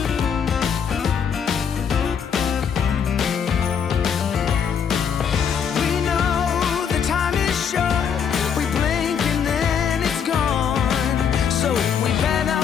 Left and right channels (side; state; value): right; quieter; 7.3 dB